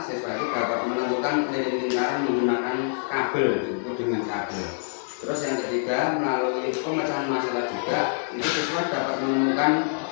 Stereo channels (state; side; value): silent; right; digital silence